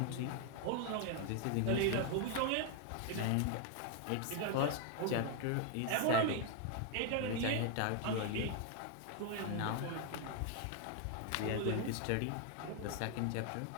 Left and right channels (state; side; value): different; both; correlation 0.01